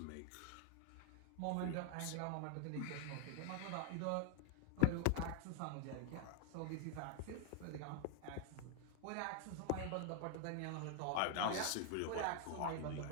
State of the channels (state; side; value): different; both; correlation 0.00